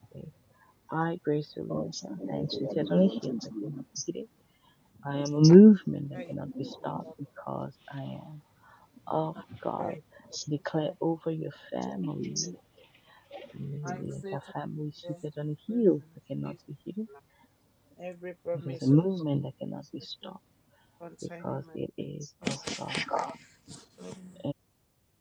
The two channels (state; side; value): identical; both; correlation 1.00